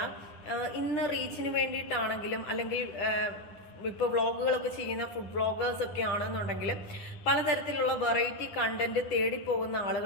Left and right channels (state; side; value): late; right; 10 ms